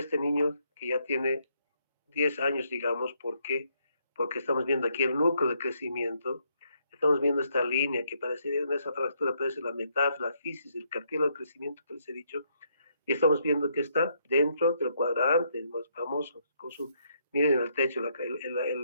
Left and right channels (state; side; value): inverted; both; correlation -0.73